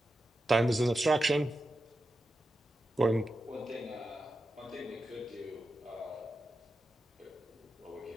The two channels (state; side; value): normal; both; correlation 0.90